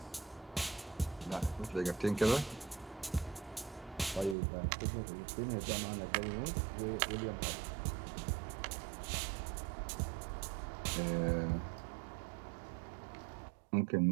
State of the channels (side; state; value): left; drops out; at 4.4 s